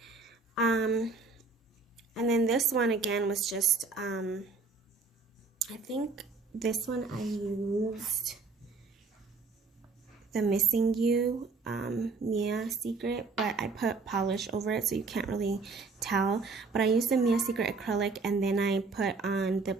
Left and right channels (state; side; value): quieter; left; 4.1 dB